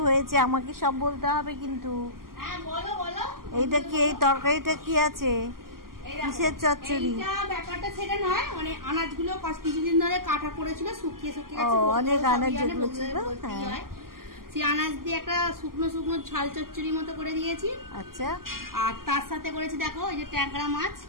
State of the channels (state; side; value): late; left; 0.92 ms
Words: হয়েছে, আমাকে সব বলতে হবে কিন্তু। এইটা কি, এই তরকারিটা কি আছে, কিসের চচ্চড়ি? ব্যাপারটা সেটা নয়, মানে আনাজগুলো কিছুদিন ধরে কাটা পড়েছিল, শুকিয়ে শুকিয়ে গেছে। অনেক আনাজ যেগুলো ছিল, সেই আনাজ দিয়ে একটা শুকনো শুকনো ঝাল চচ্চড়ি মতো করে দিয়েছি। আচ্ছা, আর তার সাথে করেছি দেখো এই যে ট্যাংরা মাছ